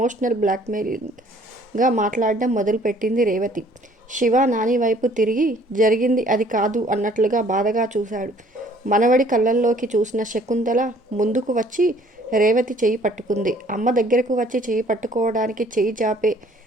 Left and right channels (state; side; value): normal; both; correlation 0.57